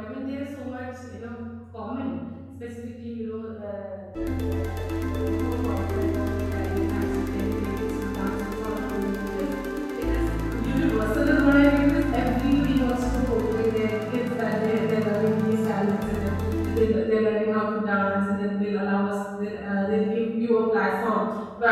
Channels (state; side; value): identical; both; correlation 1.00